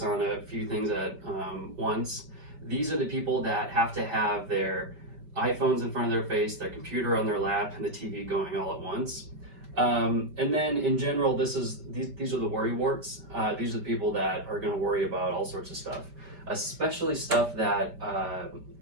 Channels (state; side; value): late; left; 5.2 ms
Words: on a few things at once. These are the people that have to have their iPhones in front of their face, their computer on their lap, and the TV going all at once. And then in general, these are the worry warts. These are the people that are going to worry about all sorts of stuff, especially stuff that